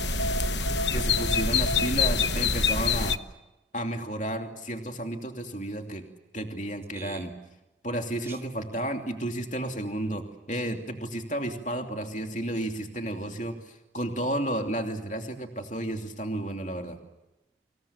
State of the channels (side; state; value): both; normal; correlation 0.35